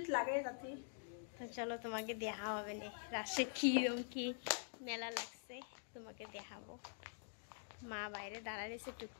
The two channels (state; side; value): silent; right; digital silence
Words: লাগে যাতে। তো চলো তোমাকে দেখা হবে না রাসে কিরম কি মেলা লাগছে, তোমাকে দেখাবো। মা বাইরে দাঁড়ায় রয়েছে,